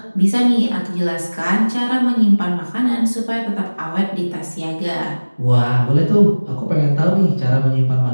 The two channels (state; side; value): inverted; both; correlation -1.00